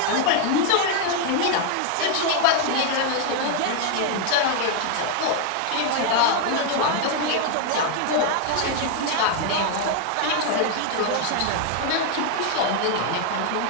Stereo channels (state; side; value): different; both; correlation 0.00